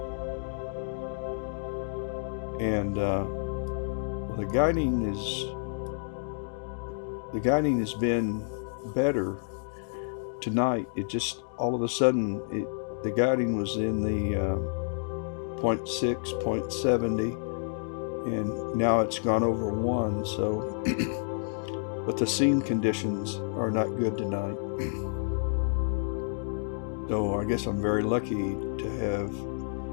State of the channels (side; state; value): right; silent; digital silence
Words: and well, the guiding has been better tonight. It just all of a sudden the guiding was in the 0.6, 0.70, and now it's gone over 1. So, but the scene conditions are not good tonight. So I guess I'm very lucky to have